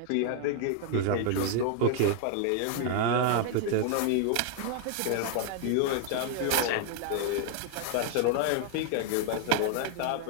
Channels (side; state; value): both; different; correlation 0.00